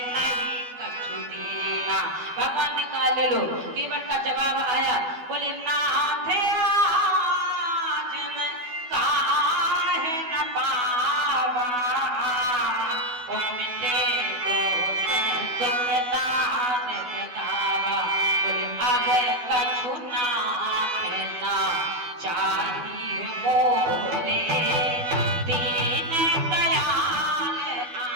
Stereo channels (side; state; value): left; late; 12 ms